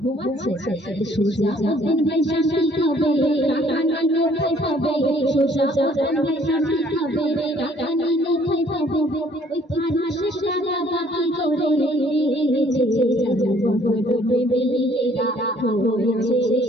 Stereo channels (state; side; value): normal; both; correlation 0.60